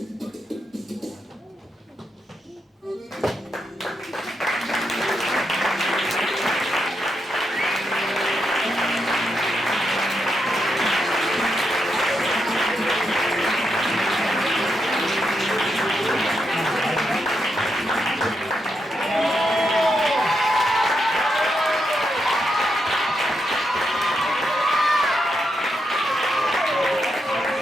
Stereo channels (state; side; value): normal; both; correlation 0.83